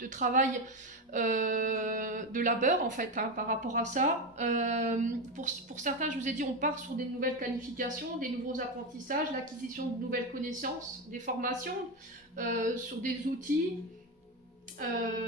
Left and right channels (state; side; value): normal; both; correlation 0.14